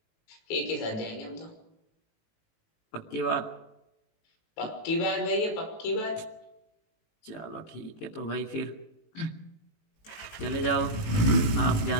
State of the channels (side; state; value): right; late; 19 ms